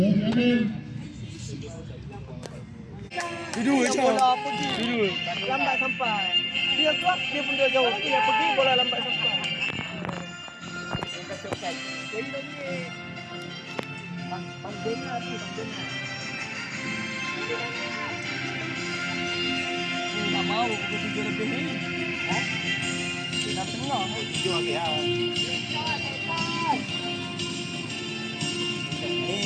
je. Bola pergi. Duduk. Lambat sampai. Dia keluar, dia pun dia jauh. Dia pergi, bola lambat sampai. Jadi lagi. Pandena tu, pandena. Tak mau pukul 7 lebih ni. Ha? Dah tengah. 7 habis lah.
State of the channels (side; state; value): both; identical; correlation 1.00